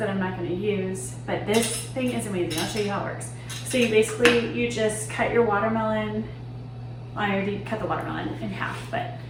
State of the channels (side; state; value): both; identical; correlation 1.00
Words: I'm not going to use, but this thing is amazing. I'll show you how it works. So you just cut your watermelon. I already cut the watermelon in half, but